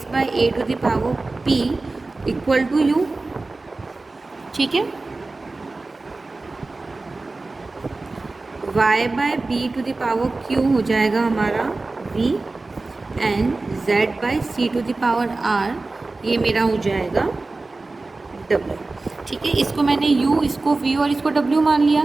by a to the power p equal to u, ठीक है। y by b to the power q हो जाएगा हमारा v and z by c to the power r, ये मेरा हो जाएगा w, ठीक है। इसको मैंने u, इसको v और इसको w मान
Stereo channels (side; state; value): left; quieter; 3.4 dB